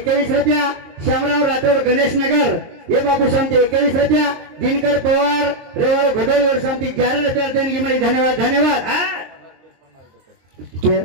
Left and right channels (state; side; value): late; left; 23 ms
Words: रुपया श्यामराव राठौर गणेश नगर ये बाबू शांति 21 रुपया दिनकर पवार रेवाड़ो घडोली और शांति 11 रुपया देणगी मिली धन्यवाद धन्यवाद